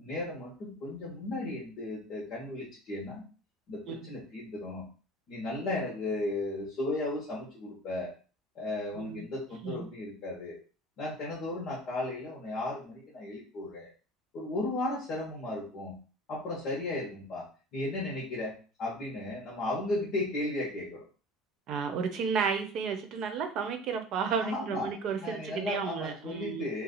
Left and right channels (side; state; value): both; normal; correlation 0.40